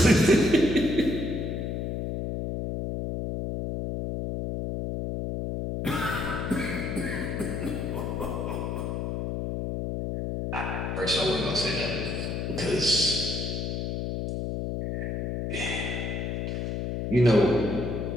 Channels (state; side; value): noise; left; hum, 2 dB below the sound